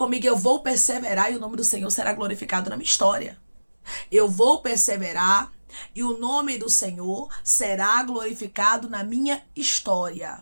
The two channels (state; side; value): inverted; both; correlation -1.00